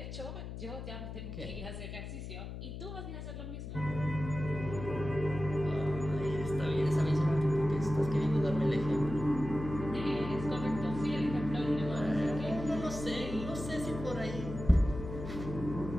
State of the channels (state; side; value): noise; left; hum, 8 dB below the sound